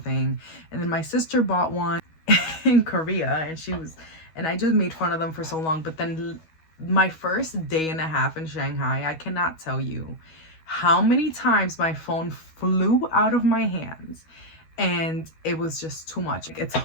And then my sister bought one in Korea, and I just made fun of them for so long. But then my first day and a half in Shanghai, I cannot tell you how many times my phone flew out of my hands, and it was just too much. It's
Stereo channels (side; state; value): right; late; 12 ms